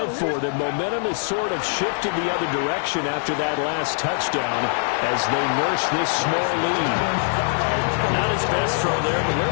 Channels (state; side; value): silent; right; 61 dB below the other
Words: for them. Momentum has sort of shifted the other direction after that last touchdown as they nurse this small lead. Not his best throw there, but where